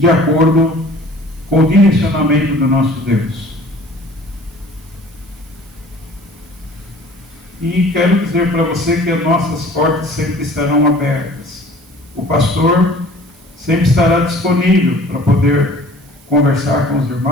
acordo com o direcionamento do nosso Deus. E quero dizer para você que as nossas portas sempre estarão abertas. O pastor sempre estará disponível para poder conversar com os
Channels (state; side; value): noise; right; hiss, 28 dB below the sound